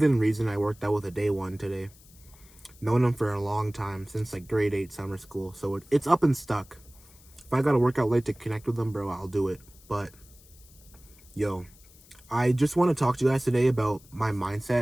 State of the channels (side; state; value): left; noise; hiss, 25 dB below the sound